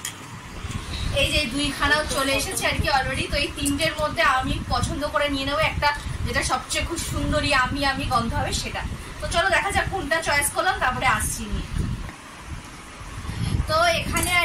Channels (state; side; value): identical; both; correlation 1.00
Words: এই যে দুইখানাও চলে এসেছে আর কি অলরেডি। তো এই তিনটের মধ্যে আমি পছন্দ করে নিয়ে নেবো একটা, যেটা সবচেয়ে খুব সুন্দরী আমি গন্ধ হবে সেটা। তো চলো দেখা যাক কোনটা চয়েস করলাম, তারপরে আসছি নিয়ে। তো এখানে